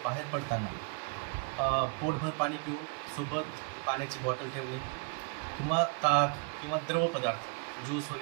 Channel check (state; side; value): quieter; left; 34.0 dB